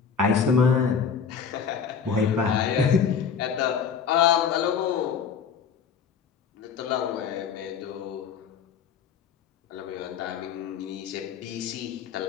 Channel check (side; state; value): right; quieter; 6.5 dB